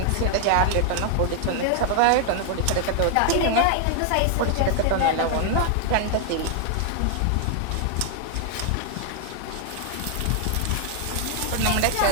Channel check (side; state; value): both; different; correlation 0.00